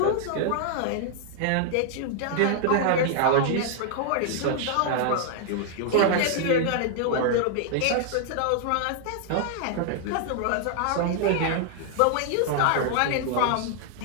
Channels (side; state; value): both; different; correlation 0.00